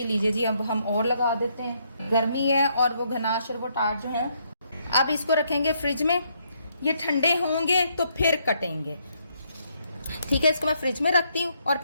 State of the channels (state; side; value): inverted; both; correlation -0.73